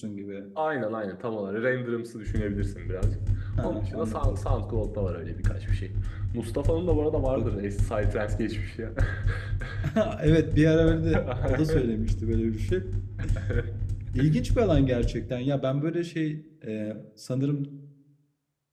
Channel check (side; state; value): both; identical; correlation 1.00